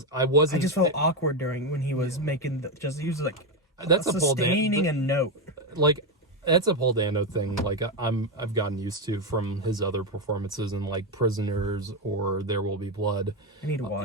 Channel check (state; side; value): normal; both; correlation 0.08